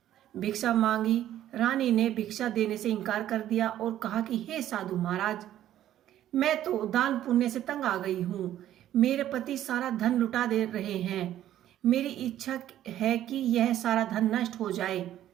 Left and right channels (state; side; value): quieter; left; 12.2 dB